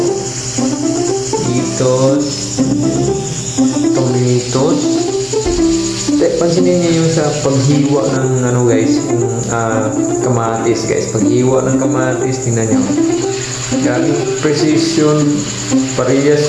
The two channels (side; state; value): both; identical; correlation 1.00